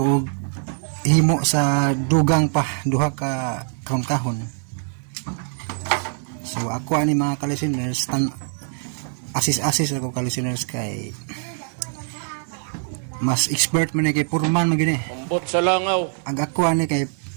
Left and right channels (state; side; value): silent; left; 61 dB below the other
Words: himo sa dugang pa duha ka kahon-kahon. So ako ani mga ka-listeners, asis ako ka-listeners kay mas expert man kay purman man gini. Ambot sa langaw. Ang ako ani kay